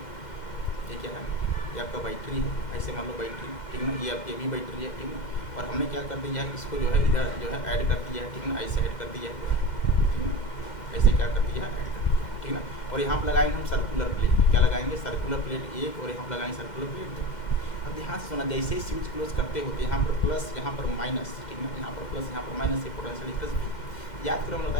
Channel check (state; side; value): late; right; 2.1 ms